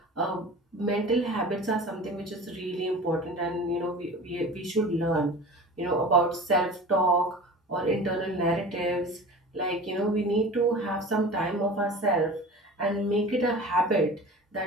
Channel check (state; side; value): normal; both; correlation 0.37